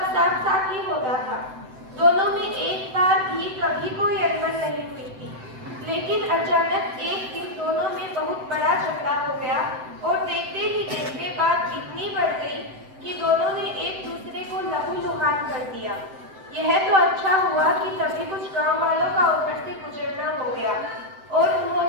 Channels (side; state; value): left; late; 7.8 ms